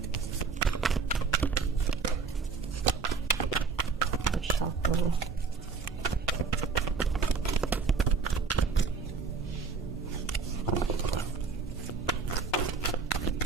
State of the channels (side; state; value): left; quieter; 5.1 dB